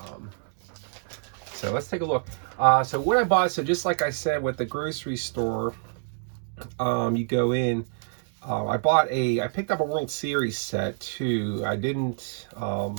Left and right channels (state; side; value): silent; left; digital silence